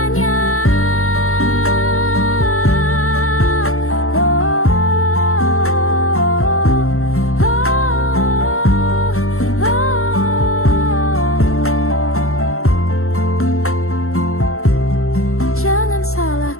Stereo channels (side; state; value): right; late; 0.63 ms